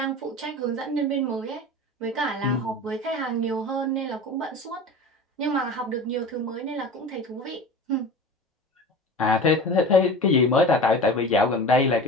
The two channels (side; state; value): both; normal; correlation 0.34